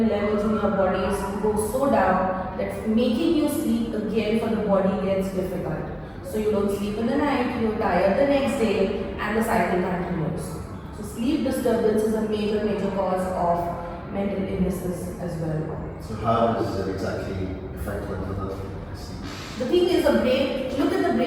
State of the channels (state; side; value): identical; both; correlation 1.00